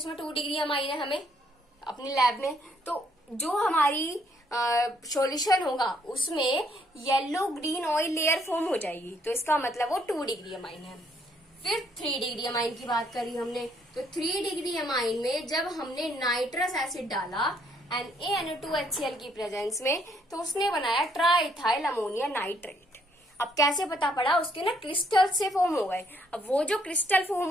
2 डिग्री अमाइन है हमें अपनी लैब में। तो जो हमारी सॉल्यूशन होगा उसमें yellow green oil layer form हो जाएगी, तो इसका मतलब वो 2 डिग्री अमाइन है। फिर 3 डिग्री अमाइन की बात करी हमने, तो 3 डिग्री अमाइन में जब हमने नाइट्रस एसिड डाला NaNO2HCl की प्रेजेंस में, तो उसने बनाया ट्राइथाइल अमोनिया नाइट्रेट। अब कैसे पता पड़ा, उसके ना क्रिस्टल से फॉर्म हो गए। अब वो जो क्रिस्टल फॉर्म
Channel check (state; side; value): normal; both; correlation 0.68